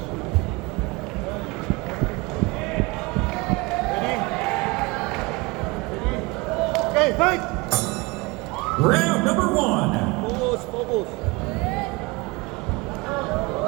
Ready? Ready? Okay, fight! Round number 1. Focus, focus.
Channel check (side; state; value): left; quieter; 25.1 dB